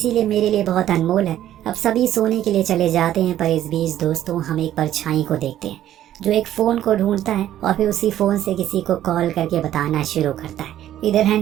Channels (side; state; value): left; quieter; 12.2 dB